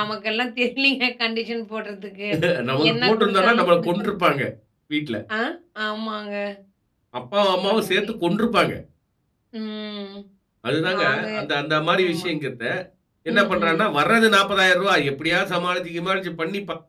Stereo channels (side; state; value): both; identical; correlation 1.00